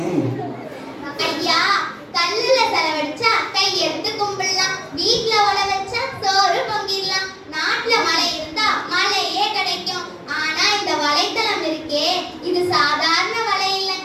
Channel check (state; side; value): identical; both; correlation 1.00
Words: ஐயா, கல்லுல செலவழிச்சா கை எடுத்து கும்பிடலாம், வீட்ல உழ வச்சா சோறு பொங்கிடலாம், நாட்டுல மழை இருந்தா மழையே கிடைக்கும். ஆனா இந்த வலைத்தளம் இருக்கே, இது சாதாரண வலை